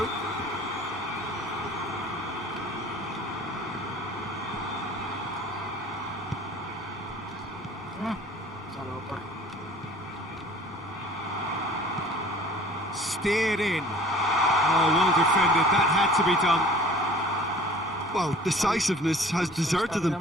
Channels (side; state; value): both; normal; correlation 0.48